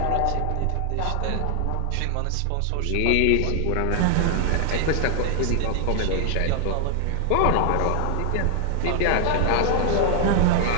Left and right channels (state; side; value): different; both; correlation 0.00